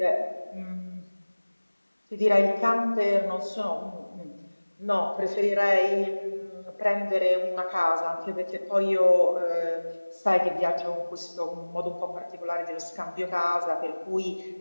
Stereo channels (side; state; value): both; inverted; correlation -1.00